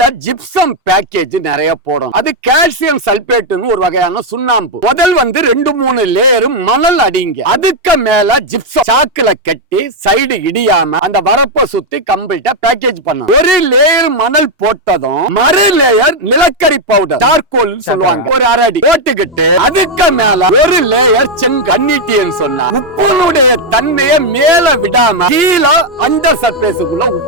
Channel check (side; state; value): both; normal; correlation 0.01